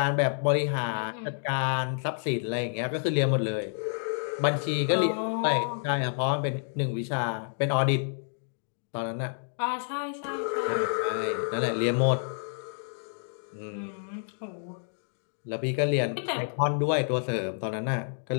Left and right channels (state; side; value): silent; right; digital silence